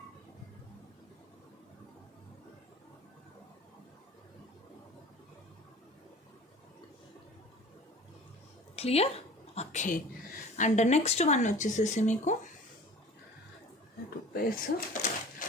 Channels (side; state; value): both; normal; correlation 0.42